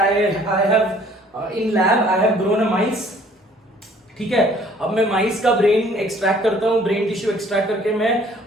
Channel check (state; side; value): normal; both; correlation 0.57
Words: have in lab I have grown a mice, ठीक है? अब मैं माइस का ब्रेन एक्सट्रैक्ट करता हूं, ब्रेन टिश्यू एक्सट्रैक्ट करके मैं